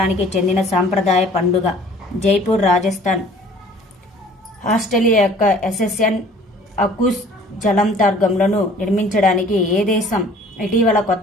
చెందిన సాంప్రదాయ పండుగ? జైపూర్, రాజస్థాన్. ఆస్ట్రేలియా యొక్క ఎస్ఎస్ఎన్ అకూస్ జలాంతర్గములను నిర్మించడానికి ఏ దేశం ఇటీవల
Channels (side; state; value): both; normal; correlation 0.52